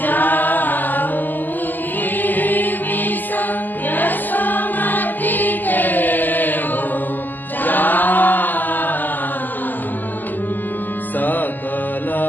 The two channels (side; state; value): right; late; 0.087 ms